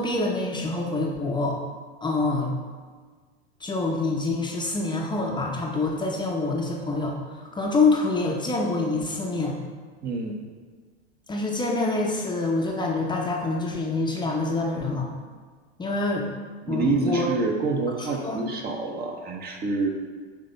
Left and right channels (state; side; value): normal; both; correlation 0.38